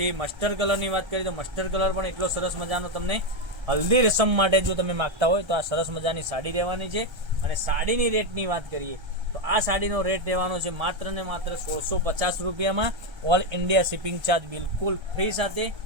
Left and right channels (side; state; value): left; late; 1.3 ms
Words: મસ્ટર્ડ કલરની વાત કરીએ તો મસ્ટર્ડ કલર પણ એટલો સરસ મજાનો તમને હલ્દી રસમ માટે જો તમે માગતા હોય તો આ સરસ મજાની સાડી રહેવાની છે. અને સાડીની રેટની વાત કરીએ તો આ સાડીનો રેટ રહેવાનો છે માત્ર ને માત્ર 1650 રૂપિયામાં. ઓલ ઇન્ડિયા શિપિંગ ચાર્જ બિલકુલ ફ્રી સાથે